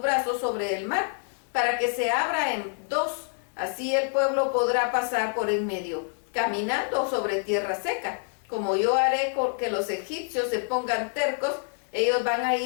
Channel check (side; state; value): right; silent; 60 dB below the other